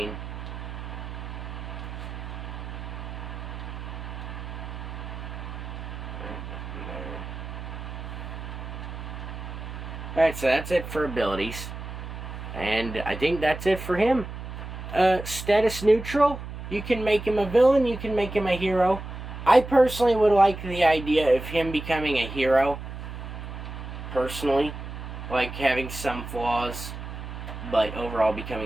Alright, so that's it for abilities. And I think that's it for him. Status neutral. You can make him a villain, you can make him a hero. I personally would like the idea of him becoming a hero. Personally. Like having some flaws, but overall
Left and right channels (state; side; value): noise; right; hum, 9 dB below the sound